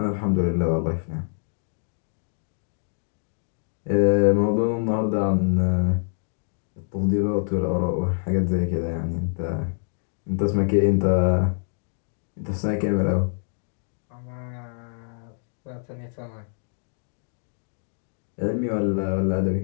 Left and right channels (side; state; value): right; silent; digital silence